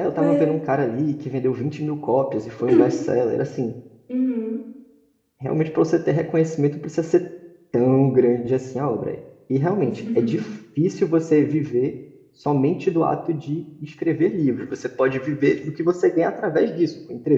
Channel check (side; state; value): both; identical; correlation 1.00